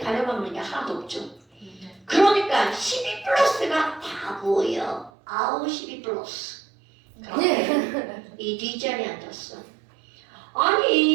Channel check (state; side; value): drops out; left; at 5.1 s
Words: 게 하나도 없죠. 그러니까 12 플러스가 다 보여. 아우 12 플러스. 그런데 이 뒷자리에 앉았어.